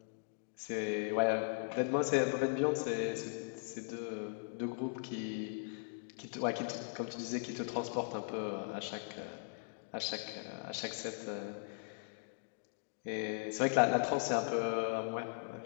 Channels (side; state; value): right; silent; digital silence